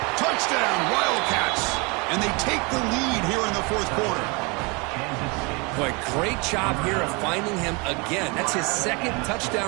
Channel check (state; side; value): quieter; left; 29.3 dB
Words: Touchdown, Wildcats. And they take the lead here in the fourth quarter. Boy, great job here of finding him again. That's his second